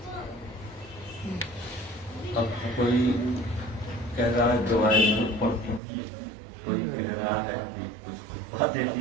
اب کوئی کہہ رہا ہے دعائیں پڑھ دیجیے, کوئی کہہ رہا ہے کہ کچھ باتیں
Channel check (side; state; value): left; drops out; at 5.8 s